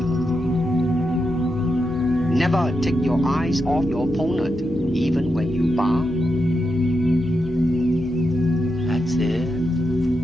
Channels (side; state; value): both; normal; correlation 0.86